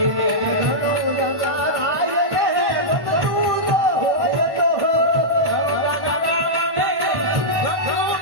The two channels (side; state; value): left; late; 1.1 ms